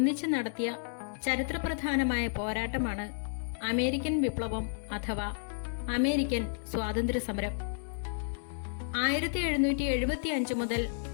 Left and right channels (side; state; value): right; silent; digital silence